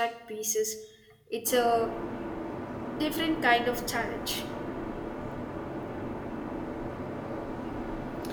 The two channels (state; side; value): identical; both; correlation 1.00